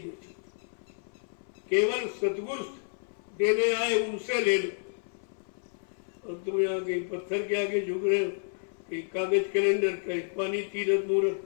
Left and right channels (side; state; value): right; silent; 58 dB below the other